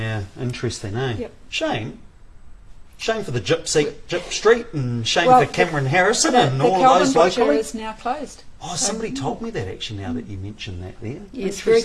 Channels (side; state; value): both; identical; correlation 1.00